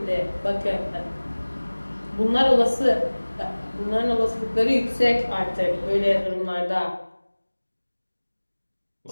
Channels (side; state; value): both; inverted; correlation -1.00